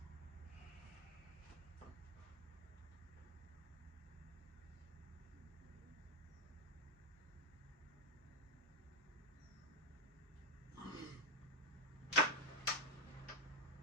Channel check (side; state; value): both; normal; correlation 0.04